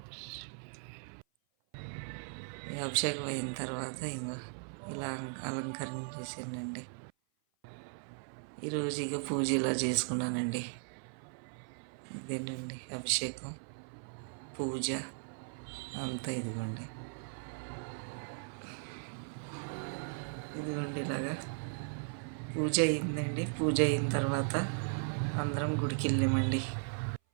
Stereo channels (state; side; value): silent; left; 53 dB below the other